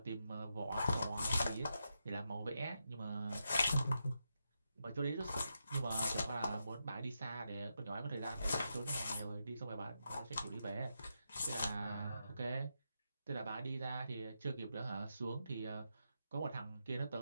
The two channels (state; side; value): inverted; both; correlation -0.85